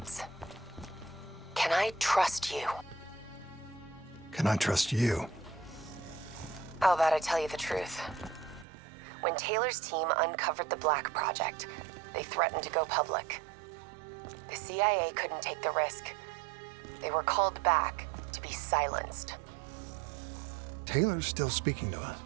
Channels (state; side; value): drops out; left; at 8.7 s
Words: Can I trust you? Can I trust you? How about I tell you the truth? When Taylor's team uncovered the Black Project, they threatened to go public. The CIA couldn't take the risk. They were called back to be silenced. Taylor's still speaking to us,